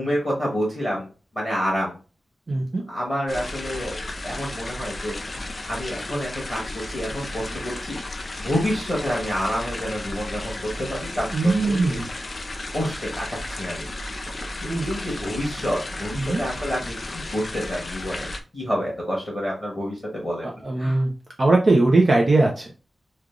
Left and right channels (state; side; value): normal; both; correlation 0.93